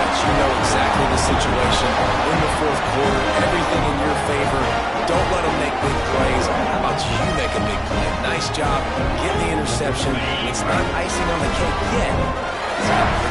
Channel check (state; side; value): identical; both; correlation 1.00